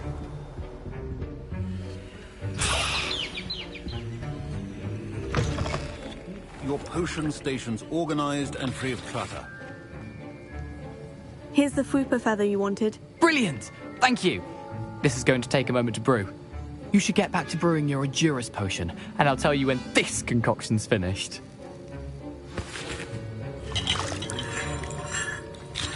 Your potion station's organized and free of clutter. Here's the Fwooper feather you wanted. Brilliant! Thank you! This is going to take a moment to brew. You should get back to brewing your Edurus potion, and I'll tell you when this concoction's finished.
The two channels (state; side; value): identical; both; correlation 1.00